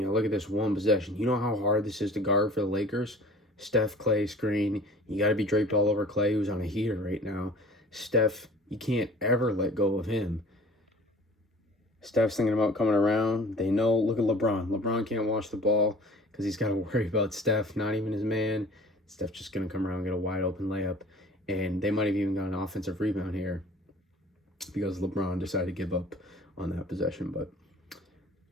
look at this one possession. You know how hard this is to guard for the Lakers? Steph, Clay screen. You got to be draped all over Clay, who's on a heater right now. Steph, you can't ever let go of him. Steph's thinking about coming around. They know, look at LeBron. LeBron can't watch the ball because he's got to worry about Steph, not even his man. Steph's just going to come around and get a wide open layup. And they might have even got an offensive rebound here because LeBron decided to give up on that possession. But,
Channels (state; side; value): normal; both; correlation 0.46